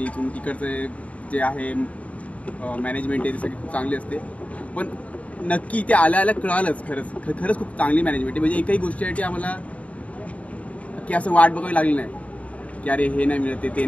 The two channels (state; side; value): late; right; 0.067 ms